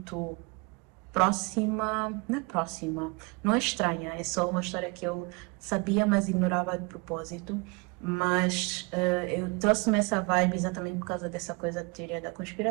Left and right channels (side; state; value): left; quieter; 28.9 dB